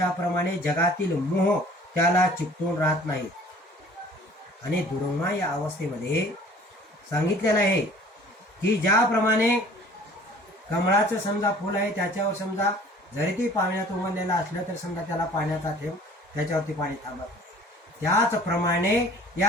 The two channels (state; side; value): normal; both; correlation 0.50